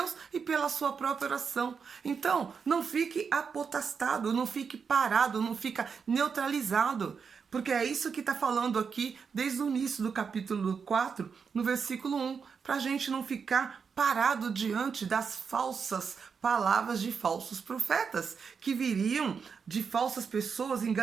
e pela sua própria oração. Então, não fique apotastado, não fique parado, não fica neutralizado, porque é isso que está falando aqui desde o início do capítulo 4, no versículo 1, para a gente não ficar parado diante das falsas palavras de falsos profetas, que viriam de falsas pessoas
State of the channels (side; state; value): left; quieter; 6.0 dB